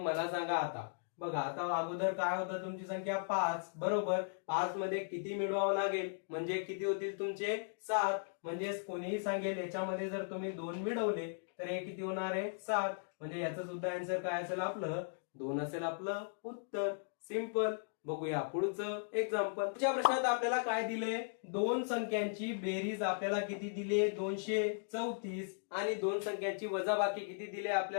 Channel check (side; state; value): right; silent; digital silence